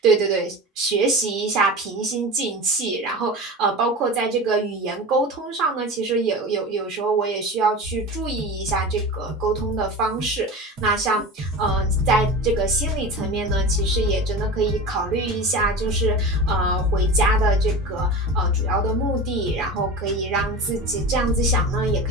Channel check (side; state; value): both; normal; correlation 0.31